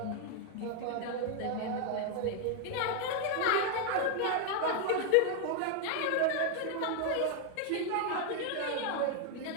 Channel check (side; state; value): both; different; correlation 0.00